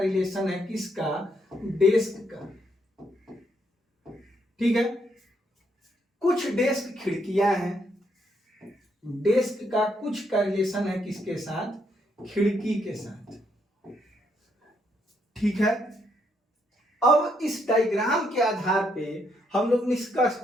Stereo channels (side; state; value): both; normal; correlation 0.75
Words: है, किसका? डेस्क का, ठीक है। कुछ डेस्क खिड़कियां हैं, डेस्क का कुछ का रिलेशन है किसके साथ? खिड़की के साथ, ठीक है। अब इस डायग्राम के आधार पे हम लोग निष्कर्ष